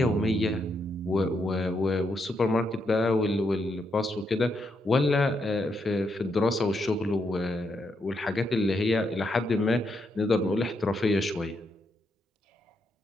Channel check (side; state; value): both; normal; correlation 0.80